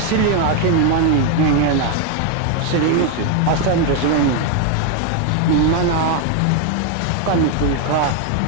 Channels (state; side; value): different; both; correlation 0.01